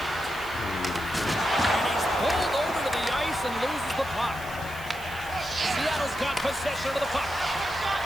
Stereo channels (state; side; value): noise; right; hiss, 18 dB below the sound